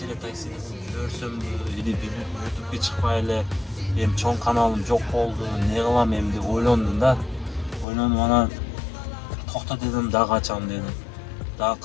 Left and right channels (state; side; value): drops out; right; at 7.9 s